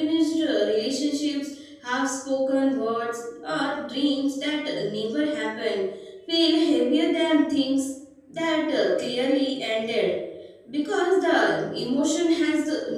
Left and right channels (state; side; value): identical; both; correlation 1.00